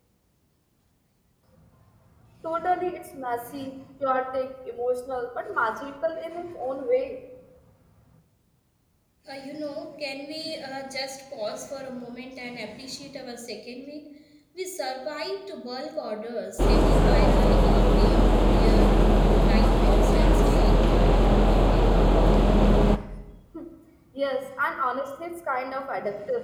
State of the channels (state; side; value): identical; both; correlation 1.00